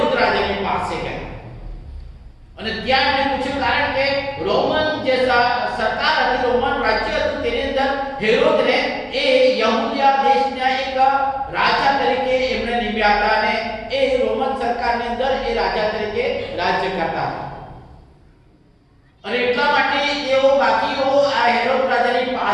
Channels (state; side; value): identical; both; correlation 1.00